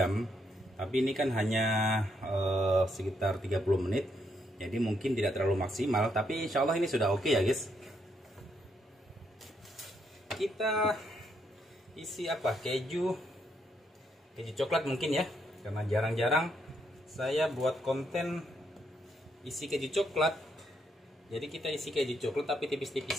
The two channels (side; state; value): both; normal; correlation 0.76